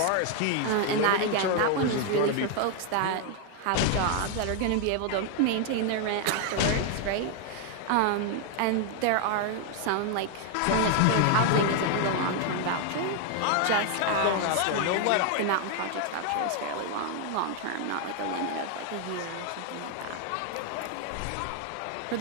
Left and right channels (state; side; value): different; both; correlation 0.00